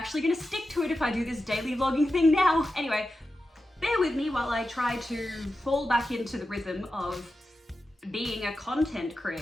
gonna stick to it if I do this daily vlogging thing now. Anyway, bear with me while I try to fall back into the rhythm of being a content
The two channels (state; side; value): normal; both; correlation 0.91